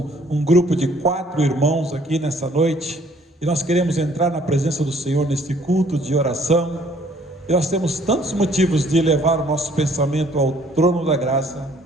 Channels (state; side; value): normal; both; correlation 0.60